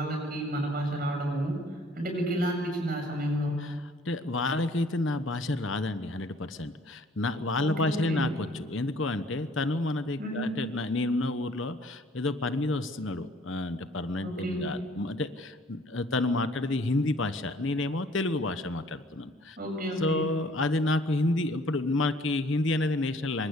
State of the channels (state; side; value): normal; both; correlation 0.57